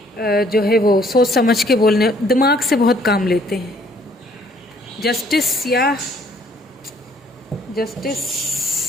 जो है वो सोच समझ के बोलने, दिमाग से बहुत काम लेते हैं। जस्टिस या justice,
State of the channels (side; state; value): both; normal; correlation 0.62